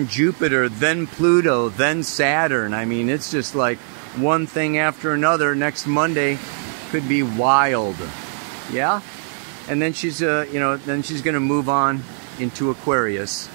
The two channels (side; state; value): left; silent; 64 dB below the other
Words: Jupiter, then Pluto, then Saturn. I mean, it's just like one thing after another. Next Monday could be wild, yeah. And then she's, you know, then she's gonna move on into Aquarius